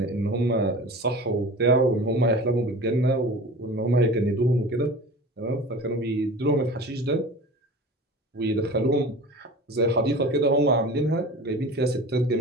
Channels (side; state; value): both; normal; correlation 0.37